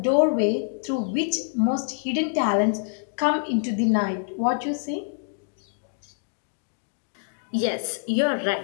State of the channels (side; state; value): right; silent; digital silence